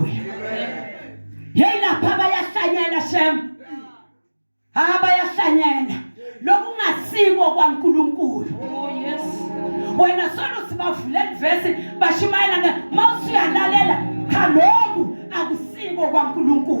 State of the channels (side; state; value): both; inverted; correlation -1.00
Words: Hey lapha bayahlanyela shem. Bayahlanyela lokungasiko kwaNkulunkulu. Oh yes. Wena solo sibavule verse bashumayela mawusuyalalela khaloku akusiko